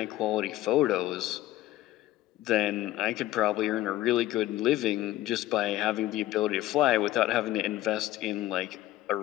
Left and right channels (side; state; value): right; quieter; 15.2 dB